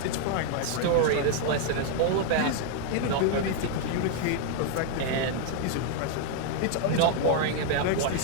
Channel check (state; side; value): different; both; correlation 0.00